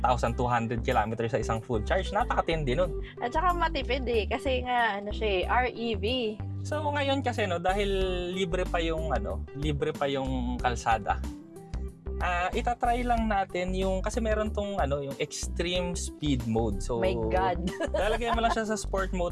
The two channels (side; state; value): both; identical; correlation 1.00